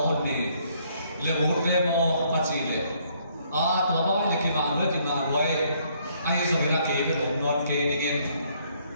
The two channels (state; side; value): inverted; both; correlation -0.67